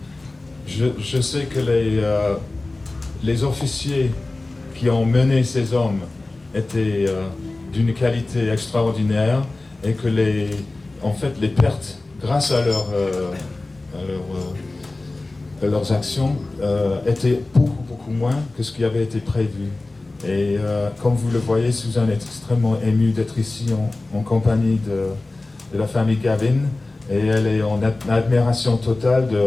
Je sais que les officiers qui ont mené ces hommes étaient d'une qualité extraordinaire et que les en fait, les pertes, grâce à leurs actions, étaient beaucoup moins que ce qui avait été prévu. Et comme vous le voyez, Suzanne est extrêmement émue d'être ici en compagnie de la famille Gavin, et elle est en admiration totale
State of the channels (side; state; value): right; quieter; 3.1 dB